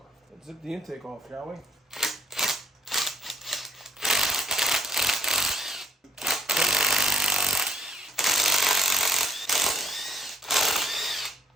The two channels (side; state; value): both; normal; correlation 0.62